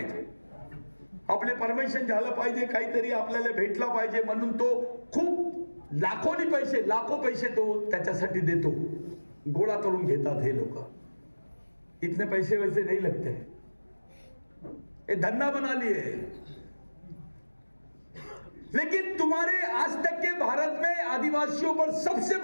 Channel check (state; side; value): inverted; both; correlation -1.00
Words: आपले परमिशन झालं पाहिजे, काहीतरी आपल्याला भेटला पाहिजे म्हणून तो खूप लाखो पैसे तो त्याच्यासाठी देतो. गोळा करून घेतात हे लोक. इतने पैसे वैसे नहीं लगते, ये धंधा बना लिए. लेकिन तुम्हारे आज तक के भारत में आदिवासियों पर सबसे